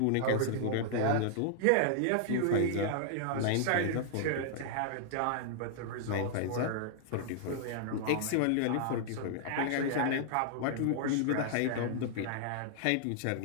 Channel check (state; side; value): different; both; correlation -0.01